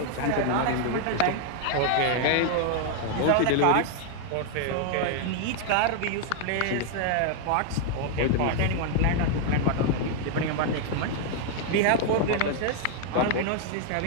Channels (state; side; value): different; both; correlation 0.00